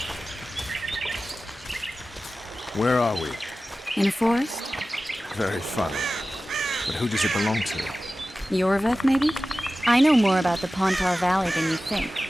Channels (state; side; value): normal; both; correlation 0.95